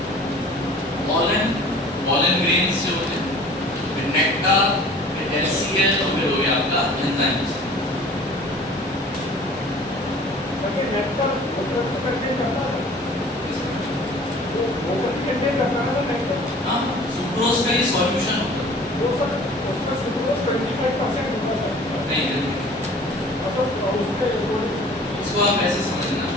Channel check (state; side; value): normal; both; correlation 0.47